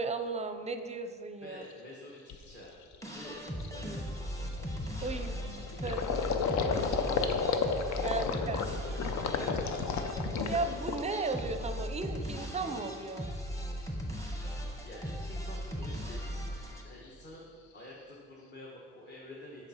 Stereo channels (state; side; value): normal; both; correlation 0.27